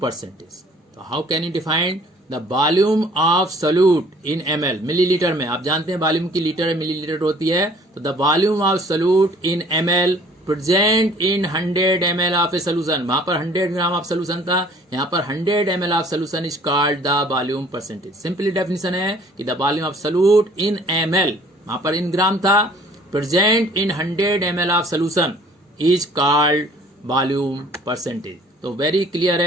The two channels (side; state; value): both; normal; correlation 0.54